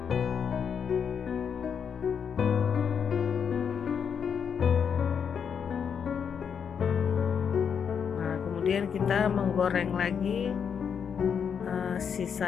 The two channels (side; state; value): right; quieter; 7.1 dB